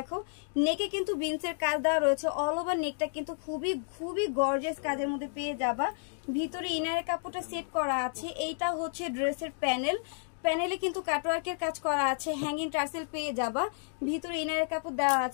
নেকে কিন্তু বিনসের কাজ দেওয়া রয়েছে। অল ওভার নেকটা কিন্তু খুবই গর্জিয়াস কাজের মধ্যে পেয়ে যাবা। ভিতরে ইনারের কাপড়টা সেট করা আছে। এইটা হচ্ছে ড্রেসের প্যানেলে কিন্তু কাটওয়ার্কের কাজ করা আছে, হ্যাঙ্গিং টার্সেল পেয়ে যাবা। ভিতরে ইনারের কাপড় দেওয়া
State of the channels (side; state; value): right; silent; digital silence